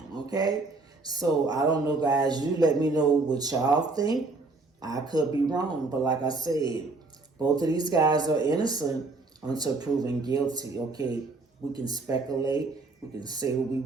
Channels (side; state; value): left; quieter; 3.5 dB